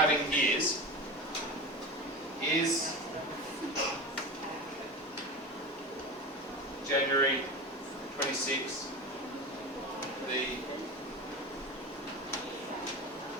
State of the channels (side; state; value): both; normal; correlation 0.27